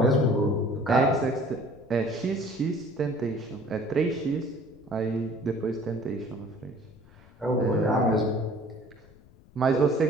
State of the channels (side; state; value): left; noise; rumble, 25 dB below the sound